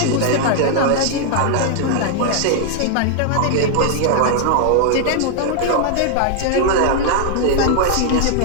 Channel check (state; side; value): different; both; correlation 0.00